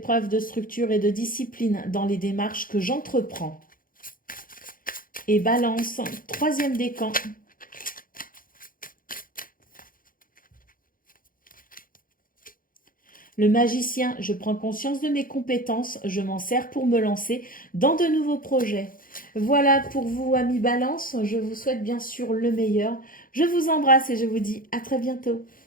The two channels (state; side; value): late; right; 0.40 ms